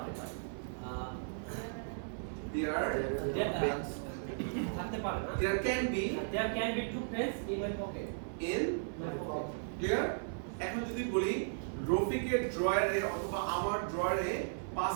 পারে থাকতে পারে না there can be there can be two pens in my pocket in clear এখন যদি বলি রফিকের ড্রয়ারে অথবা আমার ড্রয়ারে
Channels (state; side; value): silent; left; 54 dB below the other